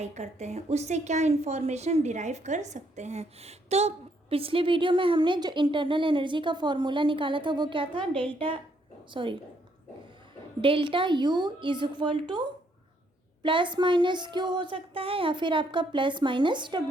करते हैं, उससे क्या इंफॉर्मेशन डिराइव कर सकते हैं। तो पिछले वीडियो में हमने जो इंटरनल एनर्जी का फॉर्मूला निकाला था वो क्या था, delta U is equal two plus minus Q हो सकता है या फिर आपका प्लस माइनस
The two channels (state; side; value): normal; both; correlation 0.71